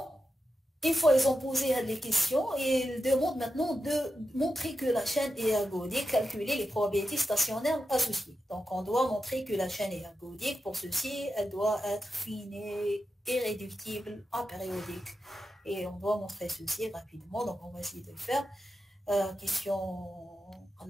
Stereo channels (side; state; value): both; normal; correlation 0.90